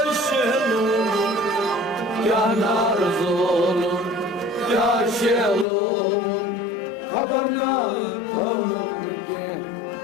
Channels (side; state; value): right; drops out; at 5.7 s